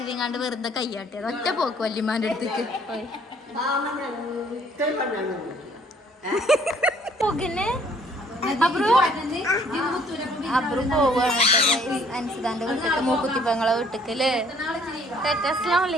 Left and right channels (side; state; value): both; normal; correlation 0.60